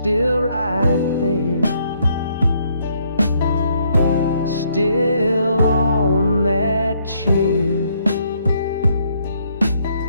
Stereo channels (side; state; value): both; inverted; correlation -0.71